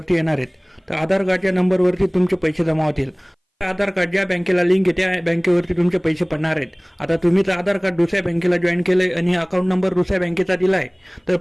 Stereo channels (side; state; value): both; identical; correlation 1.00